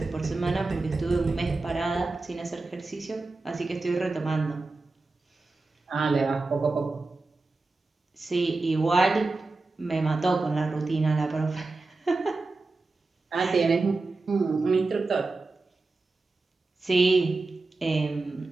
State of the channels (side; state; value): left; quieter; 3.5 dB